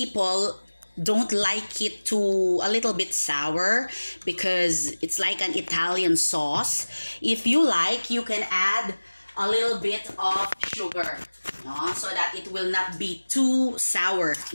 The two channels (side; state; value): both; inverted; correlation -1.00